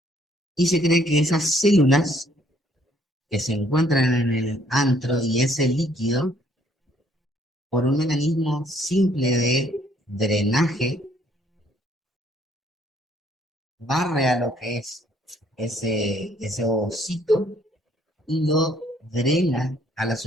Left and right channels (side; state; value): both; normal; correlation 0.65